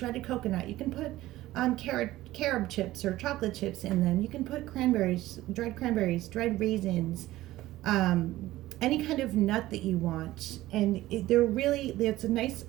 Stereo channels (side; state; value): left; quieter; 16.2 dB